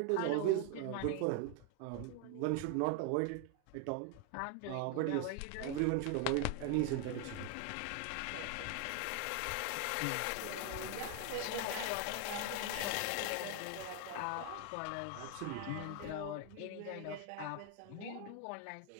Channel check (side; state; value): both; different; correlation 0.00